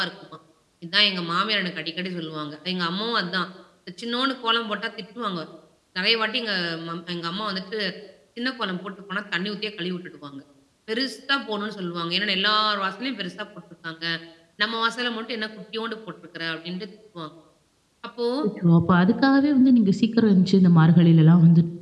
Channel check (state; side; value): identical; both; correlation 1.00